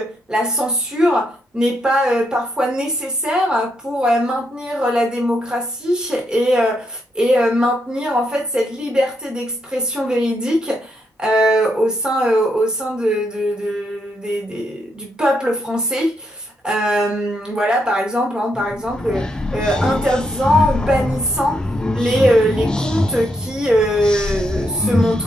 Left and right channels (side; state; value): both; normal; correlation 0.79